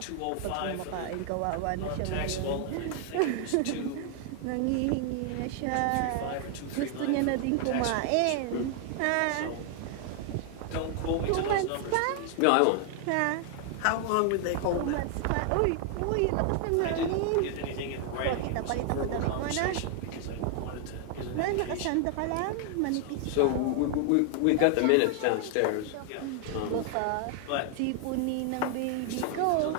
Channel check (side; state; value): both; different; correlation 0.00